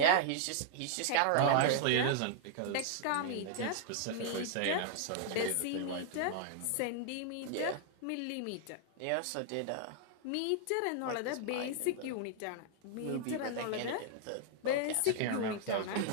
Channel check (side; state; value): both; different; correlation -0.01